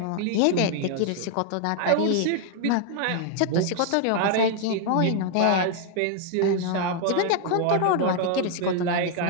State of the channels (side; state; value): both; different; correlation 0.00